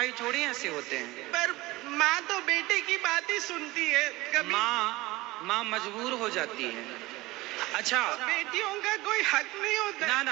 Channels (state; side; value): quieter; left; 20.1 dB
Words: थोड़ी ऐसे होते हैं। पर माँ तो बेटे की बात ही सुनती है। कभी माँ मजबूर हो जाती है। अच्छा, बेटियों का कोई हक नहीं होता।